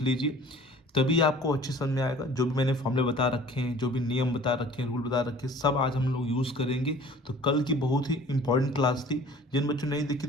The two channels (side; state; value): both; normal; correlation 0.48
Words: लीजिए, तभी आपको अच्छे समझ में आएगा। जो भी मैंने फॉर्मूले बता रखे हैं, जो भी नियम बता रखे हैं, रूल बता रखे हैं, सब आज हम लोग यूज़ करेंगे। तो कल की बहुत ही इंपॉर्टेंट क्लास थी। जिन बच्चों ने नहीं देखी